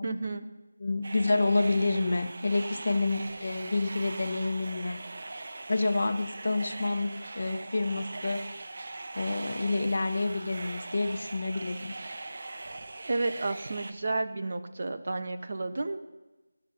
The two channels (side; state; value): both; inverted; correlation -0.96